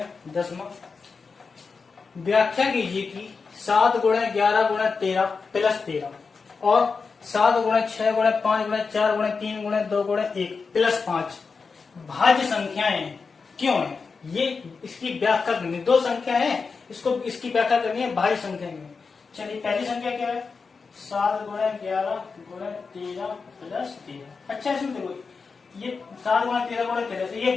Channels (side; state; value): right; quieter; 4.9 dB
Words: 10वां। व्याख्या कीजिए कि 7 गुणे 11 गुणे 13 प्लस 13 और 7 गुणे 6 गुणे 5 गुणे 4 गुणे 3 गुणे 2 गुणे 1 प्लस 5 भाज्य संख्याएं क्यों है। ये इसकी व्याख्या करनी, 2 संख्या है, इसकी व्याख्या करनी है भाज्य संख्या में। चलिए पहली संख्या क्या है? 7 गुणे 11 गुणे 13 प्लस 13। अच्छा इसमें देखो, ये 7 गुणे 13 गुणे 13 से ये